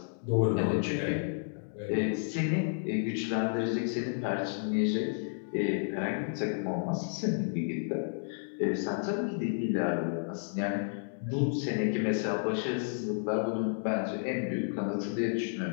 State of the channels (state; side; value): silent; right; digital silence